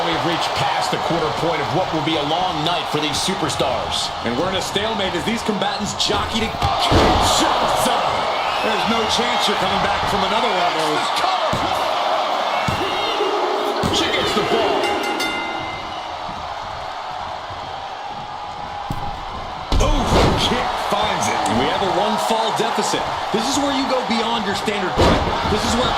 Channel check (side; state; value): both; identical; correlation 1.00